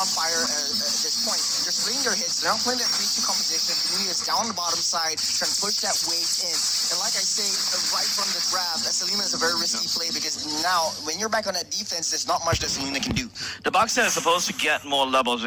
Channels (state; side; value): identical; both; correlation 1.00